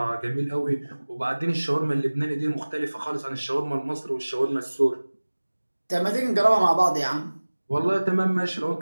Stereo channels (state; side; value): inverted; both; correlation -1.00